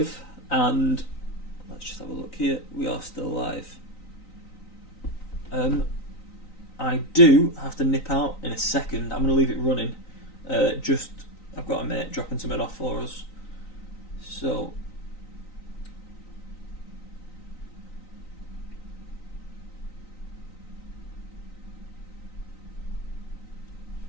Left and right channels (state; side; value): late; right; 3.9 ms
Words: and let's just have a look here. We are still live. I do have to nip out in a second. I'm going to leave it running. I've got a mate dropping something off for us. So,